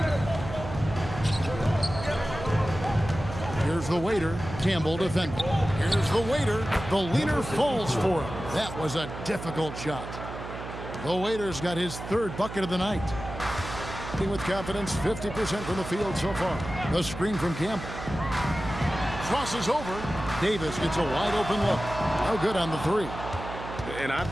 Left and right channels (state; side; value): noise; right; hum, 10 dB below the sound